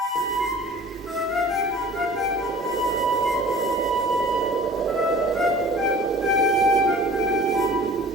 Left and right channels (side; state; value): both; normal; correlation 0.45